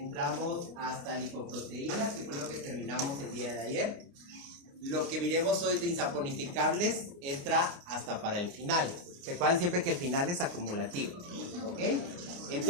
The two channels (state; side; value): late; left; 29 ms